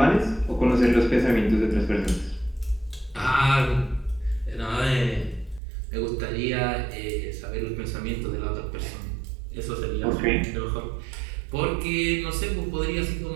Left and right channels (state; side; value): drops out; left; at 5.6 s